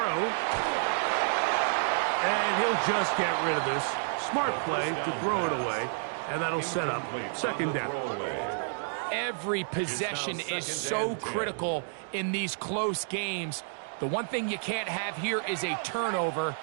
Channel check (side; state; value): left; silent; digital silence